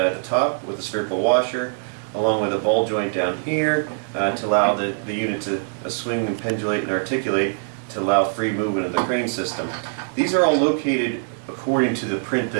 the top with a spherical washer, along with a ball joint down here to allow the unit to swing and pendulate and articulate to allow free movement of the crane system. These are all located according to the print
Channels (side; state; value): left; silent; digital silence